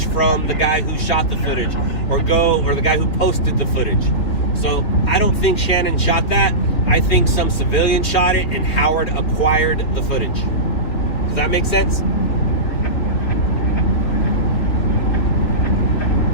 from the guy who shot the footage, or the guy who posted the footage. So I don't think Shannon shot that. I think some civilian shot it, and Howard acquired the footage. Does that make sense?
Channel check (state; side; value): late; right; 3.7 ms